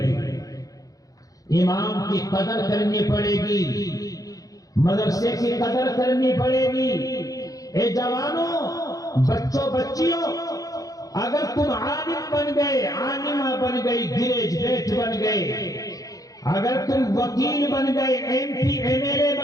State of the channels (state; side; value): late; right; 0.17 ms